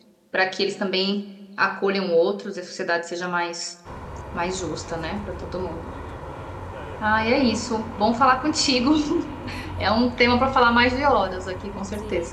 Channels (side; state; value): both; identical; correlation 1.00